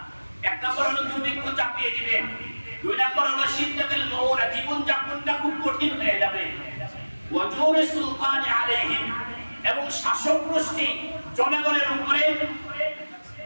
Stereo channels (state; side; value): inverted; both; correlation -1.00